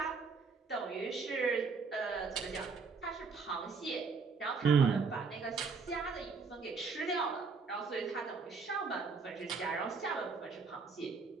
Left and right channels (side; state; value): left; quieter; 4.9 dB